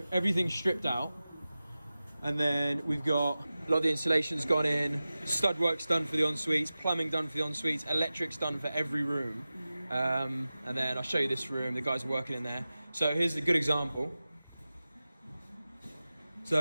everything's stripped out. And then we've got a lot of the insulation's gone in, stud work's done for the en-suites, plumbing done for the en-suites, electric's done for every room. And then I'll show you this room, the guys are working in there. So here's a good example.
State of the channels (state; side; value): inverted; both; correlation -0.95